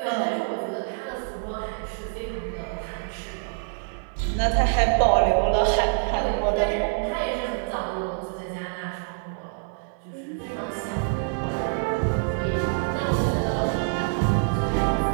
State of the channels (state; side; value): silent; left; 61 dB below the other